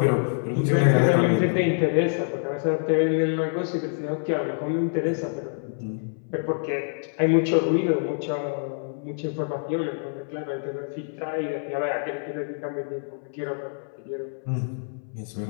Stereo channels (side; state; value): right; silent; 61 dB below the other